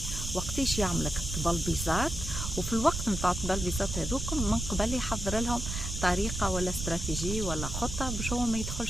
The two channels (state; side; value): noise; right; rumble, 4 dB below the sound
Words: وقتاش يعملك الطبلبيزات، وفي الوقت نتاع الطبلبيزات هذوكم من قبل يحضر لهم طريقه ولا استراتيجيه ولا خطه باش هو ما